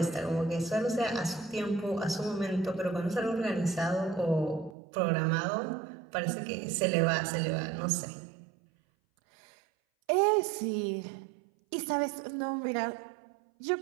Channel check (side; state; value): left; drops out; at 4.8 s